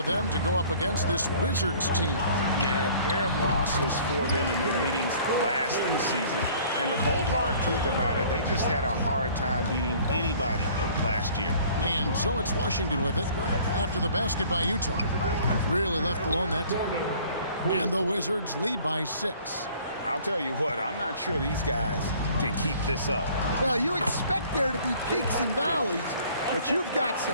them to go up against this Wizards team. Yeah, a pair of losses for them in their meetings last season. And the cold, hard truth about it, they just had a hard time beating anybody last year. And so it's Washington with it after the basket by Utah. Really left alone that time. And the Wizards lead by 6. I'll tell you what, I'm not sure these guys can keep this up. Well, you expect there to be peaks and valleys, but you've got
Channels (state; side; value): inverted; both; correlation -0.52